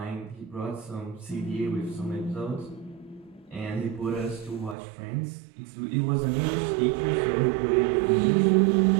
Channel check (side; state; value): left; drops out; at 4.8 s